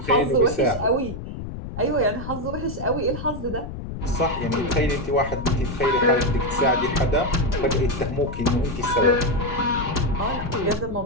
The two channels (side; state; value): left; noise; rumble, 8 dB below the sound